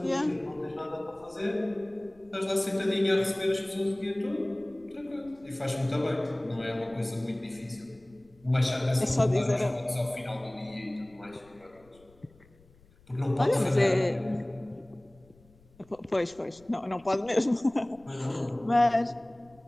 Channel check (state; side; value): noise; left; rumble, 28 dB below the sound